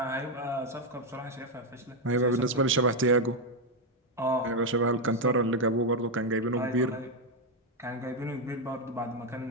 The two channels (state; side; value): normal; both; correlation 0.04